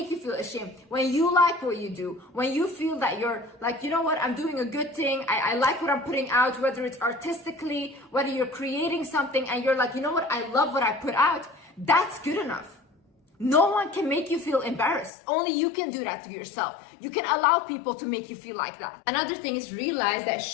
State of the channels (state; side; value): drops out; right; at 15.1 s